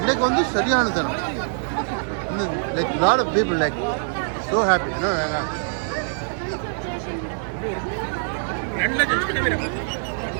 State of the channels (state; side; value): silent; left; digital silence